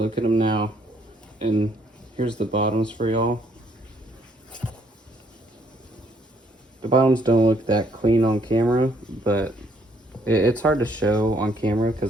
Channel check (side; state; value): both; normal; correlation 0.67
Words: at them now. And here's the bottoms for y'all. The bottoms don't look that clean on camera, but it's hard to show on camera